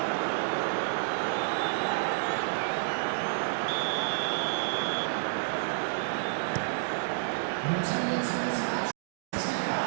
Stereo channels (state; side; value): silent; left; digital silence